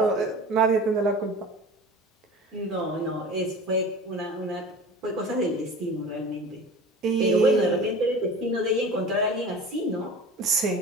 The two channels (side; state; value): both; normal; correlation 0.37